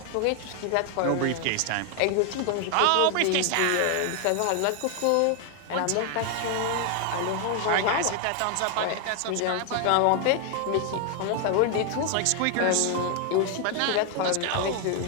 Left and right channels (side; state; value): both; different; correlation 0.00